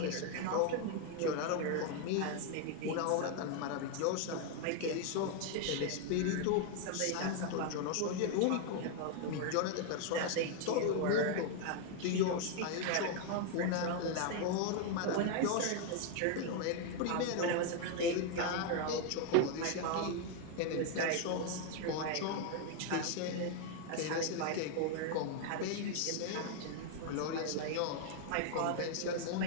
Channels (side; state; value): both; different; correlation 0.01